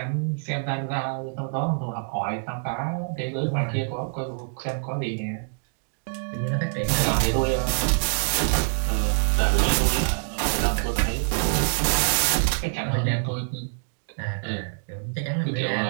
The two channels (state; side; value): silent; left; digital silence